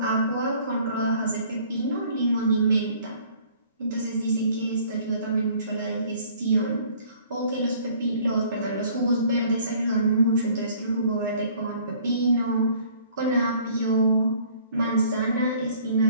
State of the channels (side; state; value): both; inverted; correlation -0.55